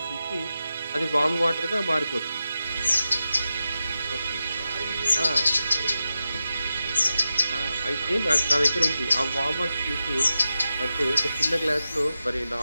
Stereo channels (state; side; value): inverted; both; correlation -0.91